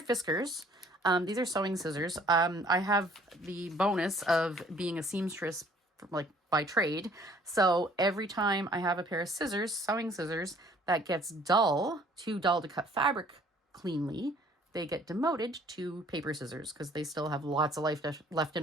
Fiskars. These are sewing scissors. I have the bonus of being a seamstress like by trade. So every time I have a pair of scissors, sewing scissors, that gets too dull to cut fabric cleanly, they get demoted to paper scissors because they still have lots of life left in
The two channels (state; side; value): normal; both; correlation 0.57